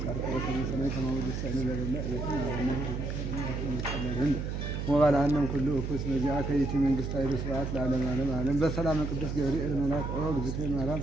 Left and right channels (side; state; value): right; noise; hum, 3 dB below the sound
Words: ሰማይ ከማውደስ ሰነዘለ ወባላንም ኩሉ እኩስ መዚያ ከይቲ መንግስት ኃይለ ስርዓት ለዓለም ዓለም በሰላም ቅዱስ ገብርኤል መልአክ ኦ ግዝቴ ማርያም